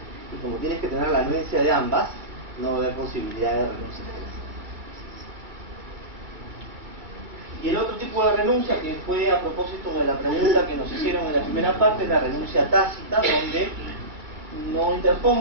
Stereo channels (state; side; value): late; left; 2.2 ms